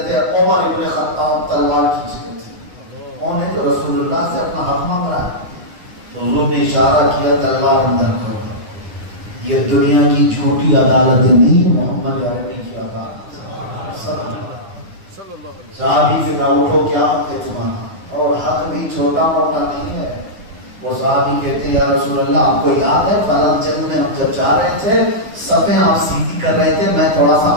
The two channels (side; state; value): left; late; 9.9 ms